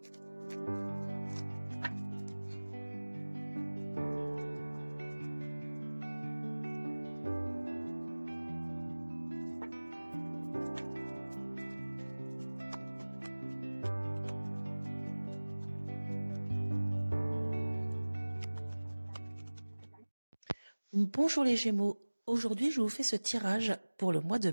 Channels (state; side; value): inverted; both; correlation -1.00